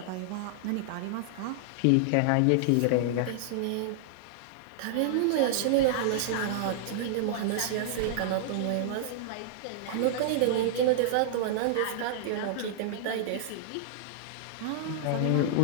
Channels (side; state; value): both; different; correlation -0.01